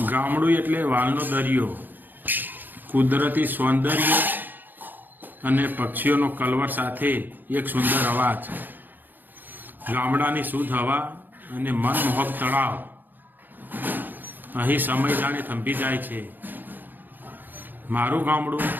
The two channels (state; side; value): late; left; 0.089 ms